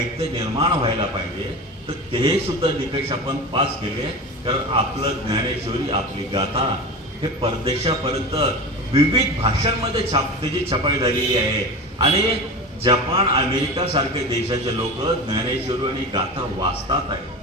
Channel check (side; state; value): both; normal; correlation 0.29